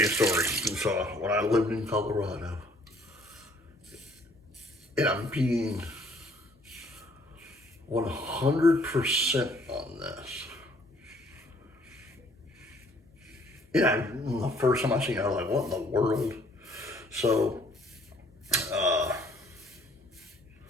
a story. So when I lived in Colorado, and I'm being 100% on this. Yeah, the first time I seen it, I was like, what in the world? So,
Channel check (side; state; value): both; normal; correlation 0.62